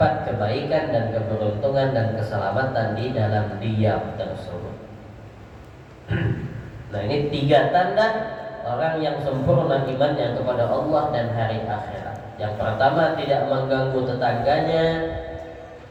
kebaikan dan keberuntungan dan keselamatan di dalam diam tersebut. Nah, ini 3 tanda orang yang sempurna imannya kepada Allah dan hari akhirat. Yang pertama, tidak mengganggu tetangganya,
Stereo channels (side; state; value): both; identical; correlation 1.00